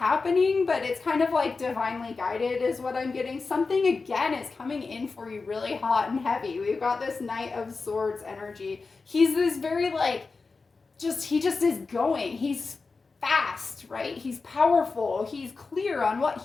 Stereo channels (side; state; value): right; quieter; 4.2 dB